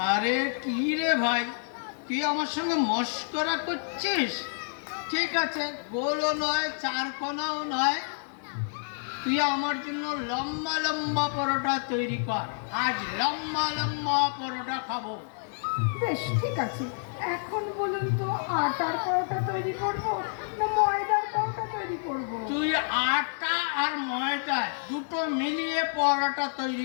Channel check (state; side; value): silent; right; 58 dB below the other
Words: আরে কি রে ভাই, তুই আমার সঙ্গে মস্করা করছিস? ঠিক আছে, গোলও নয় চারকোনাও নয়, তুই আমার জন্য লম্বা লম্বা পরোটা তৈরি কর। আজ লম্বা লম্বা পরোটা খাবো। বেশ ঠিক আছে। এখন বলুন তো, আটার পরোটা তৈরি করব না ময়দার পরোটা তৈরি করব? তুই আটা আর ময়দা দুটো মিলিয়ে পরোটা